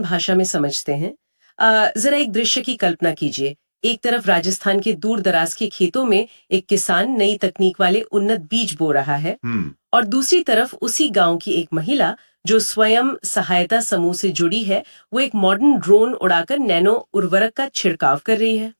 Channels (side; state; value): both; inverted; correlation -1.00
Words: भाषा में समझते हैं। जरा एक दृश्य की कल्पना कीजिए। एक तरफ राजस्थान के दूर दराज के खेतों में एक किसान नई तकनीक वाले उन्नत बीज बो रहा है, हम्म। और दूसरी तरफ उसी गांव की एक महिला जो स्वयं सहायता समूह से जुड़ी है, वो एक मॉडर्न ड्रोन उड़ाकर नैनो उर्वरक का छिड़काव कर रही है।